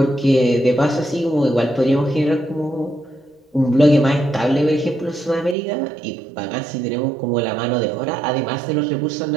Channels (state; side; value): drops out; left; at 5.6 s